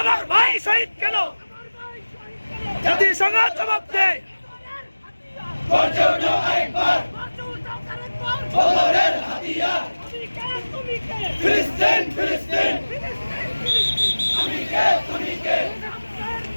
ভাই শহীদ কেন? জাতিসংঘ জবাব দেয়। বদরের হাতিয়ার ফিলিস্তিন ফিলিস্তিন আমি কে তুমি কে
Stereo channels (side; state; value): both; inverted; correlation -1.00